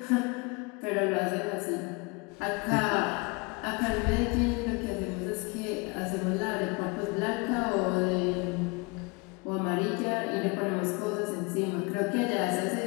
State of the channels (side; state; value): right; quieter; 28.9 dB